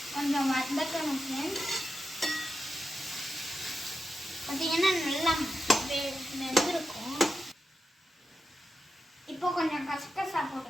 கொஞ்சம் வதக்கணும் ஃப்ரெண்ட்ஸ். பார்த்தீங்கன்னா நல்லா வெந்திருக்கும். இப்போ கொஞ்சம் கசகசா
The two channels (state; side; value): normal; both; correlation 0.89